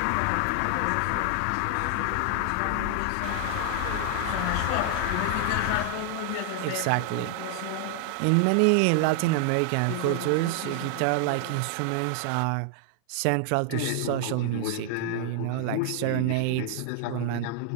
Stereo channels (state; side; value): different; both; correlation 0.00